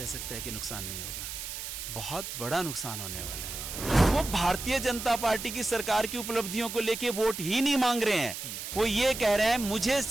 सकता है कि नुकसान नहीं होगा। बहुत बड़ा नुकसान होने वाला है। वो भारतीय जनता पार्टी की सरकार की उपलब्धियों को लेके वोट ही नहीं मांग रहे हैं, वो ये कह रहे हैं मुझे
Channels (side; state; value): right; noise; hiss, 7 dB below the sound